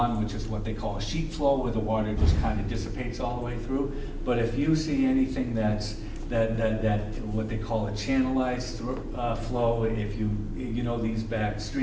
which is what they call a sheet flow, where the water just kind of dissipates all the way through. But if you see anything that what they call a channelized flow, if you know these back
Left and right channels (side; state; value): both; identical; correlation 1.00